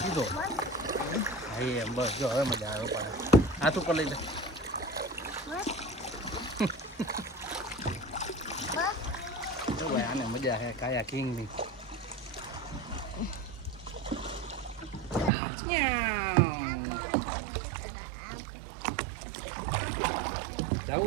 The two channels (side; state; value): left; drops out; at 15.3 s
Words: સીધો. હા એમ બસ જો હવે મજા આવે. પાડે હાથ ઉપર લઈ લે. આને મજા હે કાયાકિંગ ની.